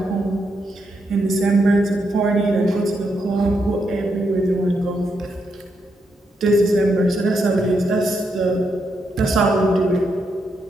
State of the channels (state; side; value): normal; both; correlation 0.81